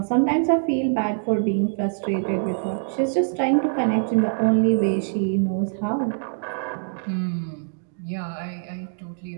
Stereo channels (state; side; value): silent; left; digital silence